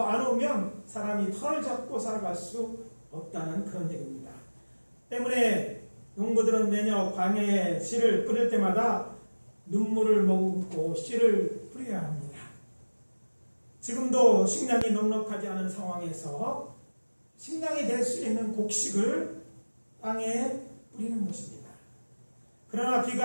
안 오면 사람이 털을 잡고 살아갈 수 없다는 그런 얘기입니다. 때문에 농부들은 매년 광야에 씨를 뿌릴 때마다 눈물을 머금고 씨를 뿌려야 합니다. 지금도 식량이 넉넉하지 않은 상황에서 식량이 될 수 있는 곡식을 땅에 뿌리는 것입니다. 그러나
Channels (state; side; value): inverted; both; correlation -1.00